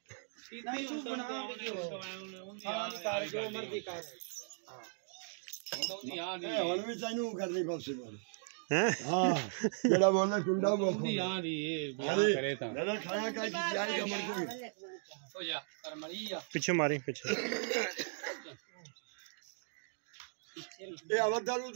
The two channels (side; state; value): left; silent; digital silence